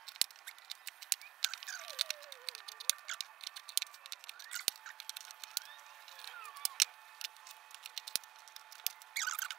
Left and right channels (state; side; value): quieter; left; 14.2 dB